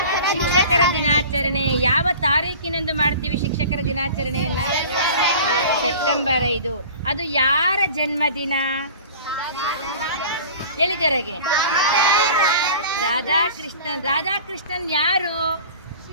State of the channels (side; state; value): both; inverted; correlation -0.41